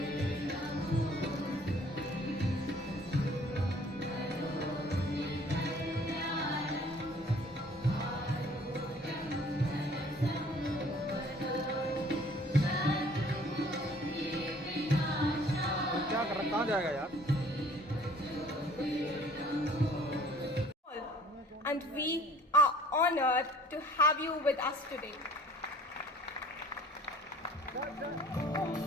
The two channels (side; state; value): both; normal; correlation 0.54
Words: क्या कर रहा, कहाँ जाएगा यार? And we are honored to have you with us today.